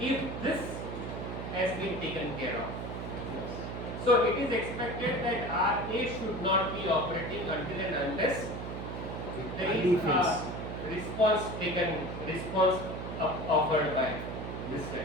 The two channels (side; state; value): right; noise; hum, 6 dB below the sound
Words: if this has been taken care of. So it is expected that RA should not be operating until and unless there is a response offered by this